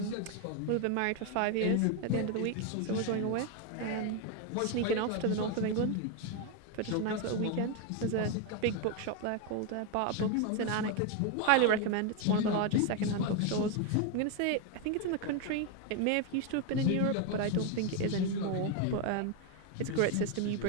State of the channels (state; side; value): different; both; correlation 0.01